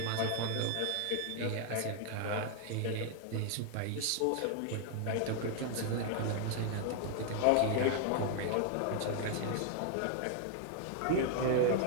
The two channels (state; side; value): different; both; correlation 0.00